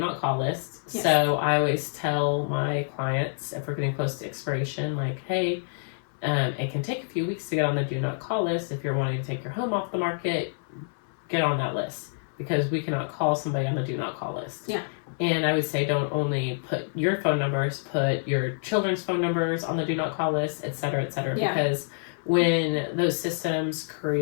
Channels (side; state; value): right; silent; 60 dB below the other